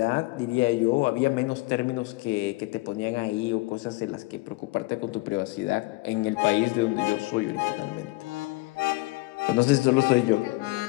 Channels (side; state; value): right; quieter; 22.6 dB